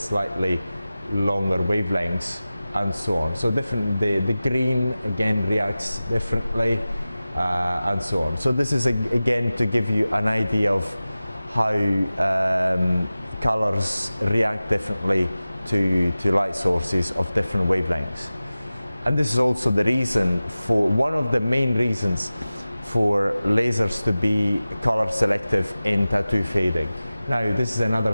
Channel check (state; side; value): inverted; both; correlation -0.96